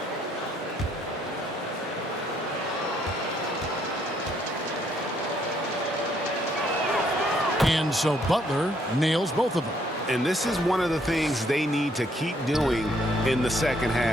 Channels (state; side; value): normal; both; correlation 0.69